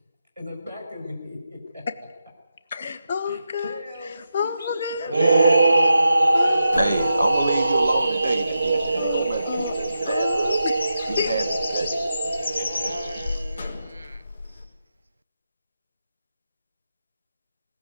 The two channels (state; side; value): inverted; both; correlation -0.88